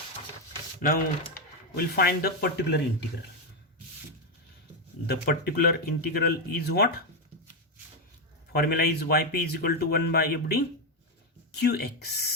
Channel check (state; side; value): normal; both; correlation 0.06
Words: Now we'll find the particular integral. The particular integral is what? Formula is yp is equal to 1 by f d